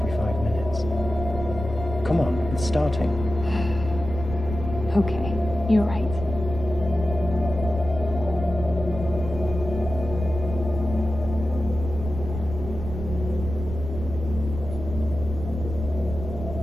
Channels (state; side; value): noise; right; rumble, 8 dB below the sound